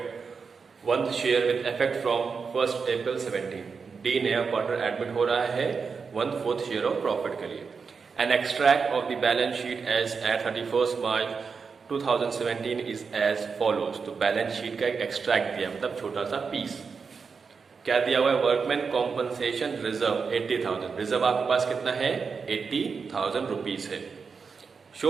1th share with effect from 1st April 17. D नया partner admit हो रहा है 1/4 share of profit के लिए। An extract of the balance sheet as at 31st March 2017 is as follows. तो balance sheet का एक extract दिया, मतलब छोटा सा पीस। क्या दिया हुआ है? Workman compensation reserve 80,000। रिजर्व आपके पास कितना है? 80,000 रुपीज है।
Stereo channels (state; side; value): quieter; left; 5.4 dB